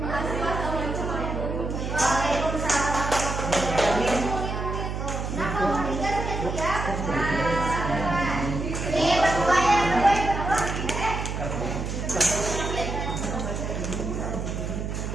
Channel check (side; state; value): right; noise; hum, 4 dB below the sound